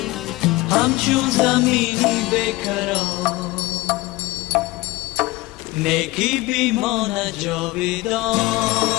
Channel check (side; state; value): right; quieter; 20.5 dB